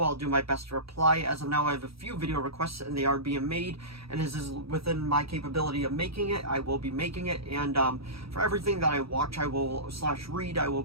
I'll do my best to reply. As of now, I have a few video requests and they are being made, and as is within my capability of making it, I will be making it. And for everything that I watch, I will /read, I will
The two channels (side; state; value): left; late; 0.76 ms